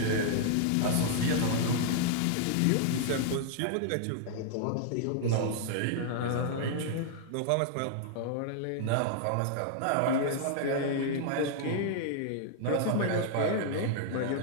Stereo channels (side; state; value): both; different; correlation -0.01